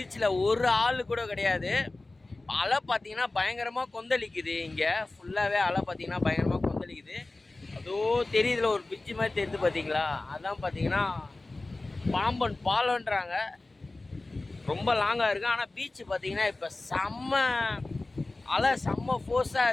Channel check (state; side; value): quieter; right; 3.1 dB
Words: ஒரு ஆள் கூட கிடையாது. அலை பார்த்தீங்கன்னா பயங்கரமாக கொந்தளிக்குது. இங்கே ஃபுல்லாகவே அலை பார்த்தீங்கன்னா பயங்கரமாக கொந்தளிக்குது. அதோ தெரியுதுல ஒரு பிரிட்ஜு மாதிரி தெரியுது பார்த்தீங்களா, அதான் பார்த்தீங்கன்னா பாம்பன் பாலம்ன்றாங்க. ரொம்ப லாங்காக இருக்குது. ஆனால் பீச்சு பார்த்தீங்கன்னா இப்போ அலை செம்ம ஃபோர்ஸாக